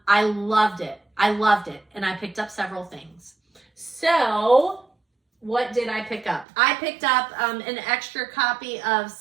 loved it. And I picked up several things. So what did I pick up? I picked up an extra copy of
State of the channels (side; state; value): left; drops out; at 6.5 s